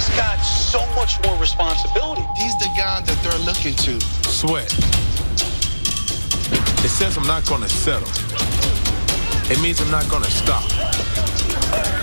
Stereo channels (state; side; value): inverted; both; correlation -1.00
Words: got so much more responsibility. He's the guy that they're looking to. Sweat. It says I'm not going to settle. It means I'm not going to stop